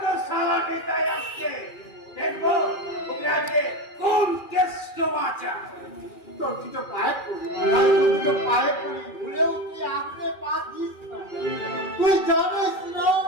তো সালা নেতায় আসছে। দেখবো ওকে আজকে কোন কেষ্ট বাঁচা। তোর দুটো পায়ে পড়ি, আর তোর দুটো পায়ে পড়ি, ভুলেও তুই আপনি পা দিস না। তুই জানিস না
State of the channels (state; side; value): late; right; 2.4 ms